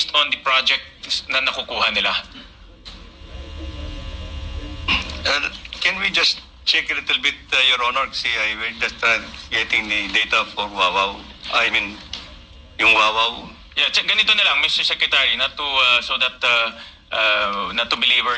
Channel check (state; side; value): identical; both; correlation 1.00